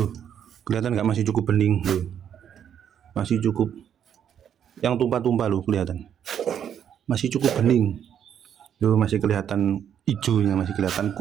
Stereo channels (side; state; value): left; quieter; 9.0 dB